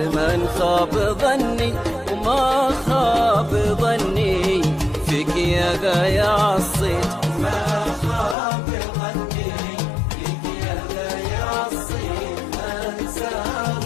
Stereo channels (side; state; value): right; drops out; at 8.3 s